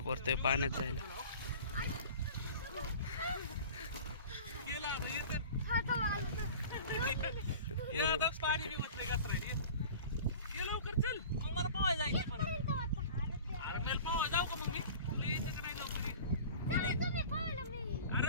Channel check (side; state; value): both; inverted; correlation -0.40